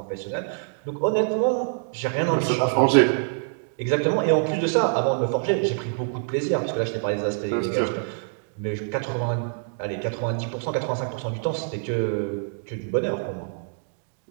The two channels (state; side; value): silent; left; digital silence